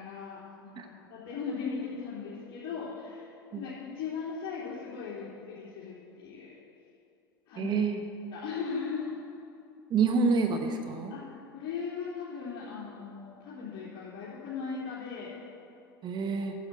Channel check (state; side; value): normal; both; correlation 0.35